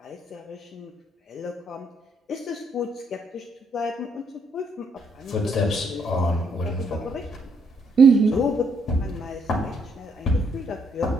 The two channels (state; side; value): normal; both; correlation 0.72